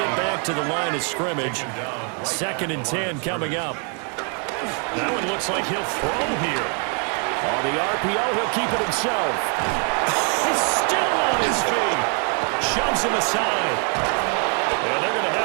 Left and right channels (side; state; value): left; quieter; 39.6 dB